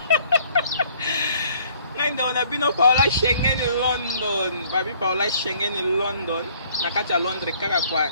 ngai ndo na bino Paola Schengen London babi Paola Schengen London na kati ya Londres kaka kwa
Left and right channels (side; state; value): both; inverted; correlation -0.59